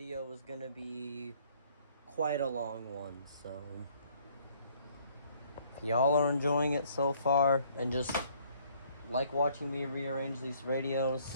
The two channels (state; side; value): inverted; both; correlation -0.61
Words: is gonna be quite a long one, so if y'all are enjoying it so far and just like watching me rearrange these radios,